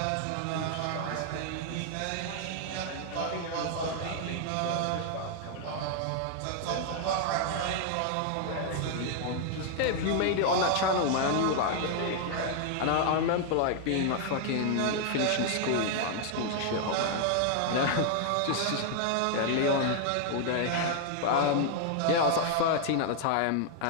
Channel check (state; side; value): different; both; correlation 0.00